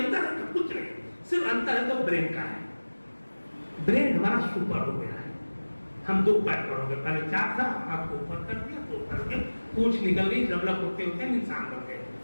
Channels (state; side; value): inverted; both; correlation -1.00